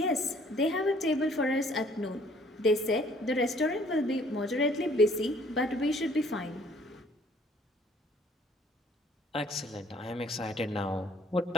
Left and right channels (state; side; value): normal; both; correlation 0.59